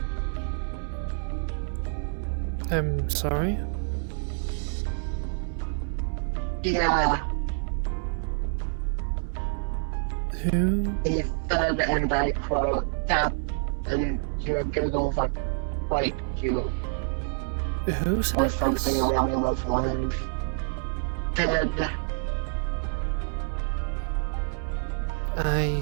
I'm sorry? Yeah. Who? He said, and I quote, Captain, your doodles are quite cute. Who said Or something this? along those lines. Said,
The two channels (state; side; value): silent; left; 60 dB below the other